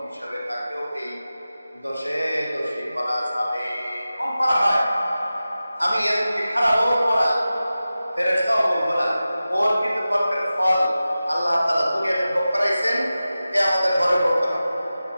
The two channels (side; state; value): both; inverted; correlation -0.95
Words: হিসাবে তাকেও এই দোষে দোষী করা যাবে, কম করা হয়। আমি এদেরকে খারাপ বলবো না, ফেরেশতাও বলবো না, ওর কিন্তু কর্মের ফল আল্লাহ তাআলা দুনিয়াতে ভোগ করাইছেন, এ আমাদের ঘরে ভোগ করা।